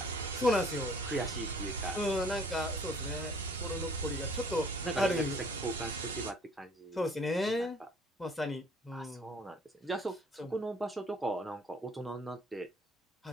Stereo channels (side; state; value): both; normal; correlation 0.56